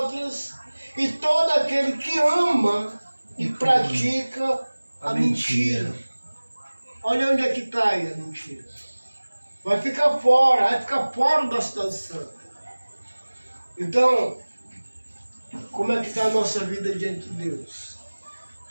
e todo aquele que ama e pratica a mentira. Olha onde é que está aí a mentira. Vai ficar fora da cidade santa. Então, como é que está a nossa vida diante de Deus?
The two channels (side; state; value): both; inverted; correlation -1.00